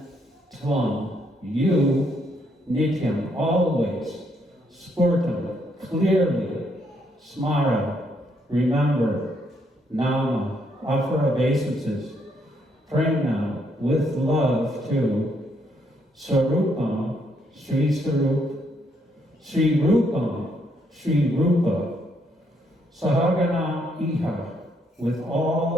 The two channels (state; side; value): normal; both; correlation 0.73